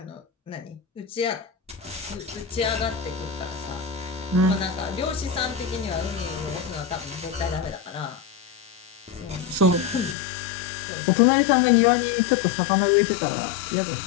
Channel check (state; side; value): drops out; right; at 10.2 s